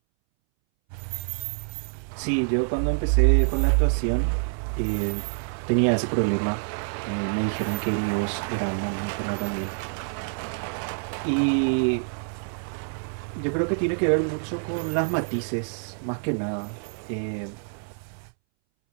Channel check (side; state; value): left; silent; 61 dB below the other